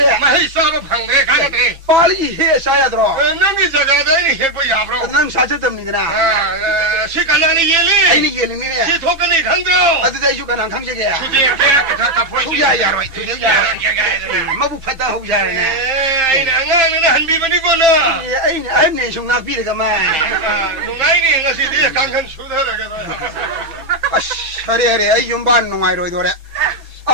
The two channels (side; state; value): left; late; 6.0 ms